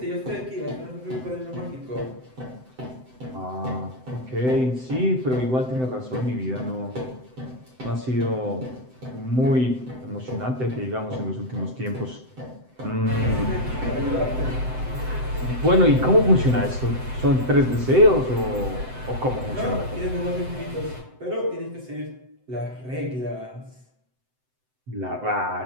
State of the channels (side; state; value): left; late; 7.8 ms